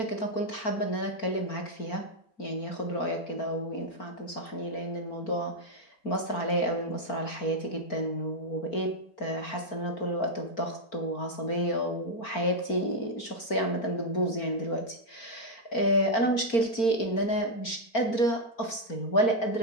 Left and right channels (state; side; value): late; right; 4.4 ms